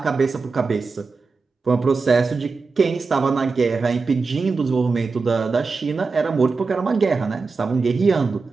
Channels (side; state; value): left; quieter; 4.4 dB